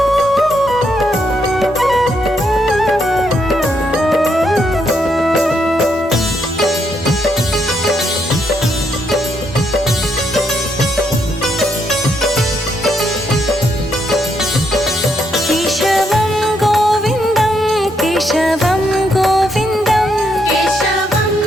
केशवं गोविन्दं केशवं गोविन्दं, केशवं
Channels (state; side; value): normal; both; correlation 0.76